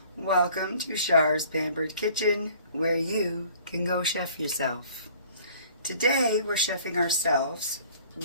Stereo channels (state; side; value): inverted; both; correlation -0.52